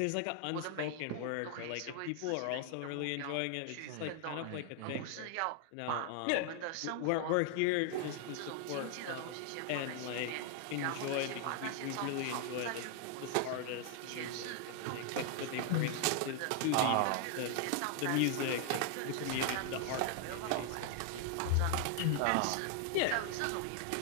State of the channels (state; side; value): different; both; correlation 0.00